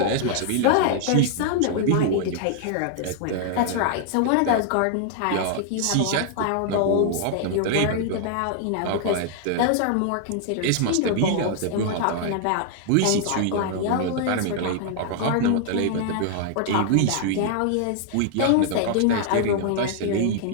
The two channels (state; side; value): different; both; correlation 0.00